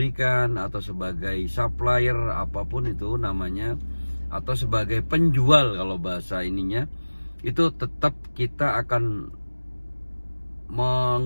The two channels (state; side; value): inverted; both; correlation -1.00